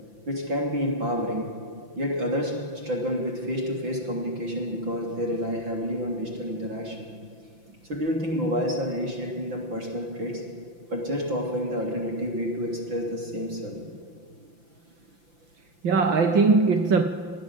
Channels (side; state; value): left; late; 5.9 ms